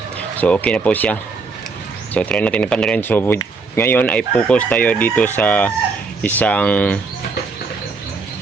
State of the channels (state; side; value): quieter; left; 4.3 dB